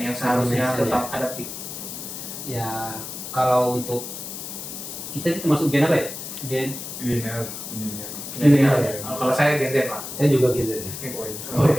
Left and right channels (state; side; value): noise; left; hiss, 9 dB below the sound